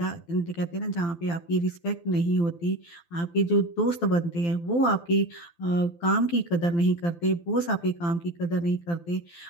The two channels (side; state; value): right; late; 12 ms